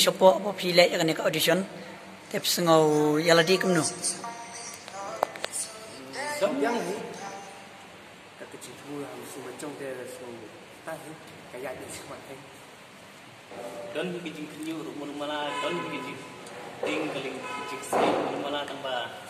apa pi le yang kena audition. Tep sengau yaladi kum no. Yang ni. Kecil pula mesti macam dia semua. Tahu kayak ni semua ni. Don bikin kenyu rumah malah don bikin tinggaling jiksi rumah malah tambah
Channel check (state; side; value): identical; both; correlation 1.00